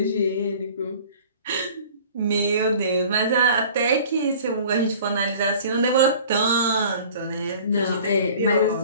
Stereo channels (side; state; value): both; inverted; correlation -0.47